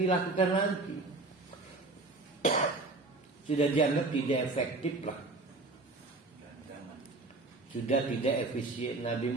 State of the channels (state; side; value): quieter; left; 3.2 dB